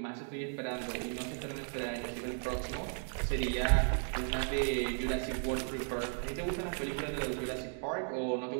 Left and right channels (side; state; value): left; silent; 54 dB below the other